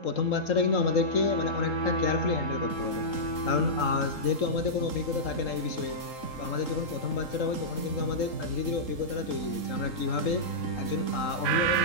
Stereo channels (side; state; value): right; late; 3.8 ms